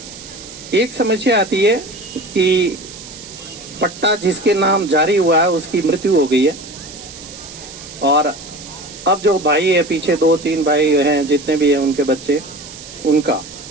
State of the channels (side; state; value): right; noise; hiss, 15 dB below the sound